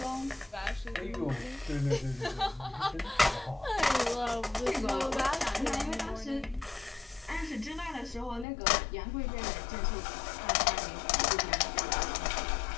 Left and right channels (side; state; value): right; drops out; at 8.5 s